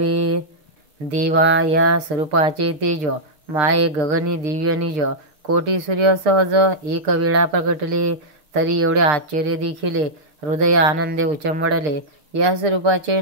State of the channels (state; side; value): late; left; 6.7 ms